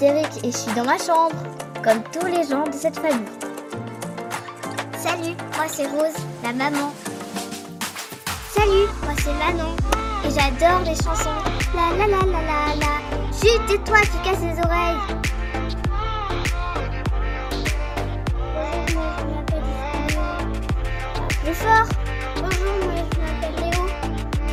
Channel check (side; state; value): both; identical; correlation 1.00